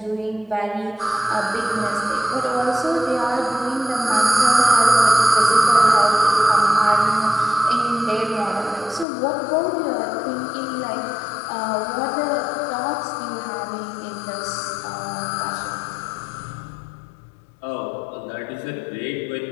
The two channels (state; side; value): drops out; right; at 9.1 s